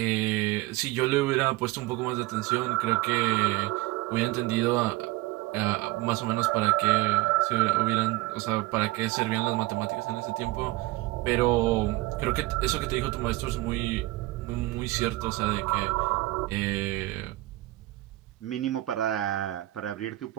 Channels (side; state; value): left; quieter; 19.1 dB